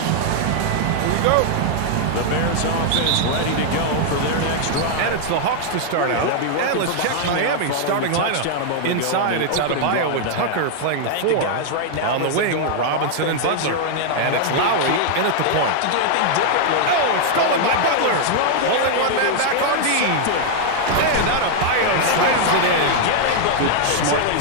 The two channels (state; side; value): different; both; correlation 0.00